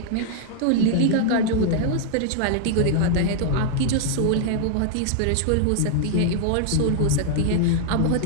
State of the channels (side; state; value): both; different; correlation -0.01